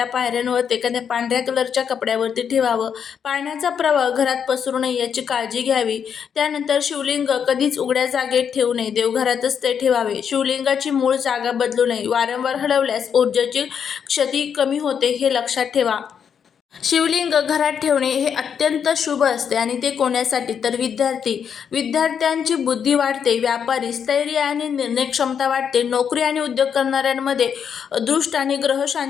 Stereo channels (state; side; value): quieter; right; 7.5 dB